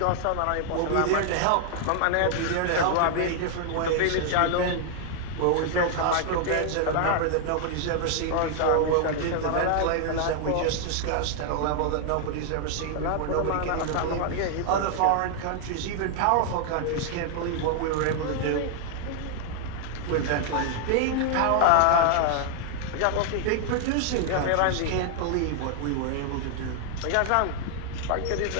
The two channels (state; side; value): different; both; correlation 0.00